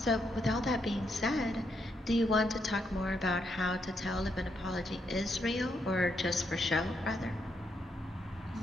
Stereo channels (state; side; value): normal; both; correlation 0.78